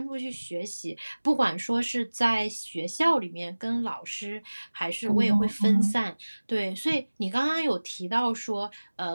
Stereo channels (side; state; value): both; inverted; correlation -1.00